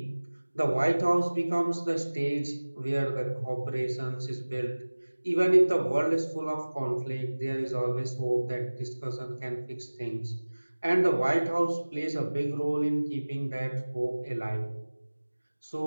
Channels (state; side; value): inverted; both; correlation -1.00